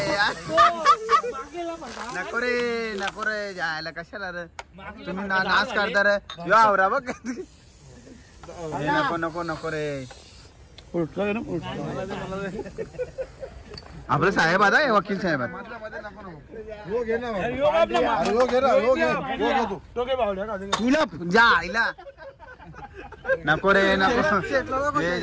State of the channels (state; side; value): identical; both; correlation 1.00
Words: नको रे जायला कशाला रे तुम्ही नाच करता रे. यो आवरा बघ. नको रे. आपलं साहेब आता आहे, वकील साहेब तुला जा आईला नको रे नको